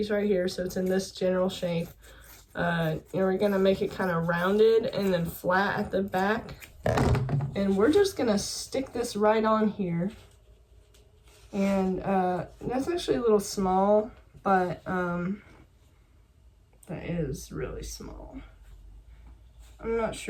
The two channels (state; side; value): identical; both; correlation 1.00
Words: right here so it's in this general shape. And we're gonna make it kind of rounded and then flat at the back. And we're just gonna stick this right on here. And that's actually a little small, but that is really small. I'm not